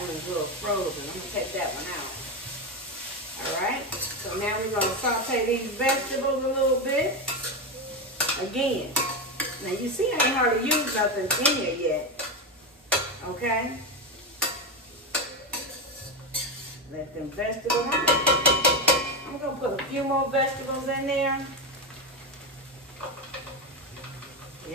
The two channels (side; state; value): both; normal; correlation 0.12